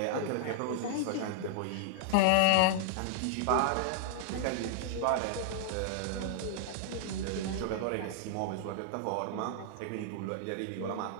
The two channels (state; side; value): different; both; correlation -0.01